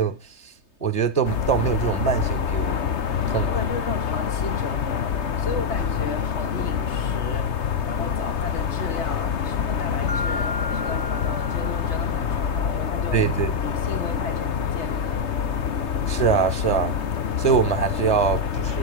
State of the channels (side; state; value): right; late; 3.3 ms